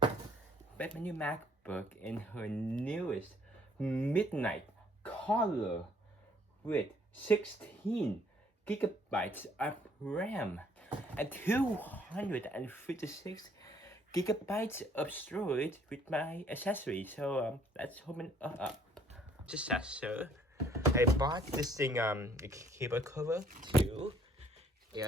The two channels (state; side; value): normal; both; correlation 0.62